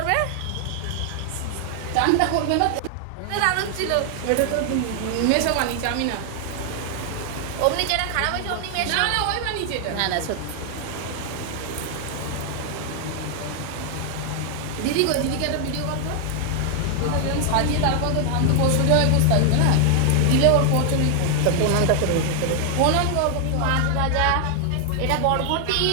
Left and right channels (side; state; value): both; different; correlation 0.00